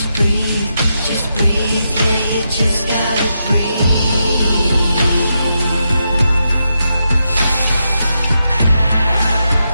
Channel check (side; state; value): both; inverted; correlation -0.84